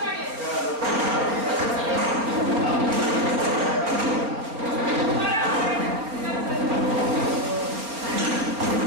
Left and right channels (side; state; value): left; late; 4.4 ms